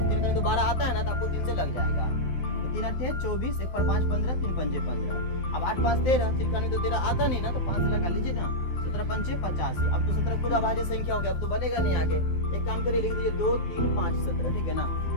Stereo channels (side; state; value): right; late; 12 ms